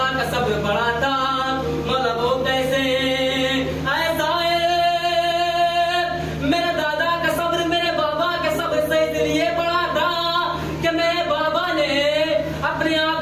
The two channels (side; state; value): left; noise; rumble, 27 dB below the sound